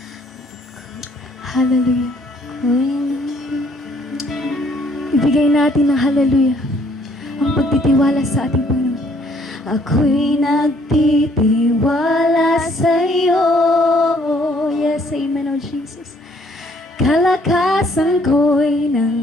Hallelujah. Ibigay natin ng hallelujah ang pagtitiwala sa ating Panginoon. Ako'y nagtitiwala sa iyo. Yes, amen, oh Jesus. Kalakasan ko'y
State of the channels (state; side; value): normal; both; correlation 0.64